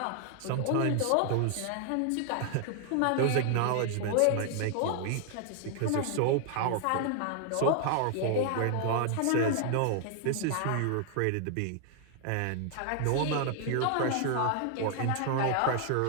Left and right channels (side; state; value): both; different; correlation 0.00